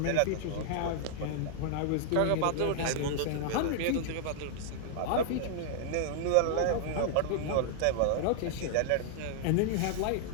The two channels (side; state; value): both; different; correlation -0.01